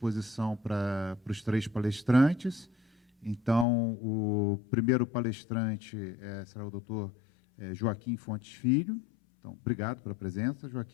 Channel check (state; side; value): drops out; right; at 3.7 s